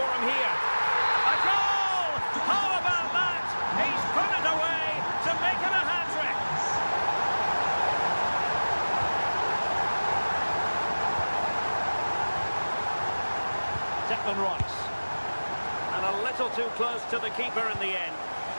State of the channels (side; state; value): both; inverted; correlation -1.00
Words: him here? A goal! How about that? He's put it away to make it a hat-trick. Declan Rice. And a little too close to the keeper in the end.